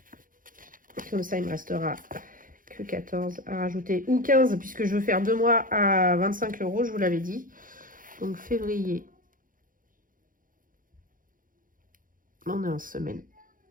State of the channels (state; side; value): late; left; 0.40 ms